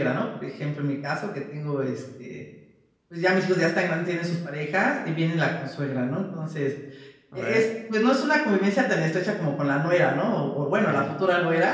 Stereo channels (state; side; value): identical; both; correlation 1.00